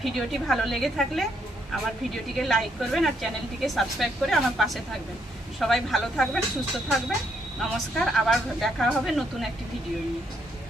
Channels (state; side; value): normal; both; correlation 0.74